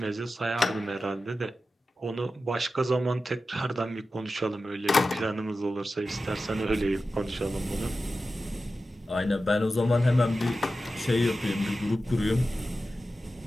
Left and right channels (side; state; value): both; normal; correlation 0.93